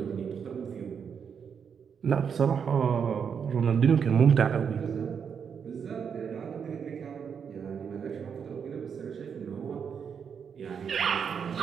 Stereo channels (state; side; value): quieter; left; 7.0 dB